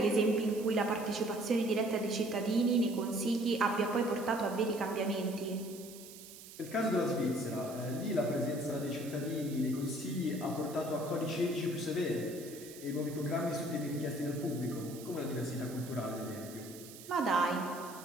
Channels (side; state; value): right; noise; hiss, 16 dB below the sound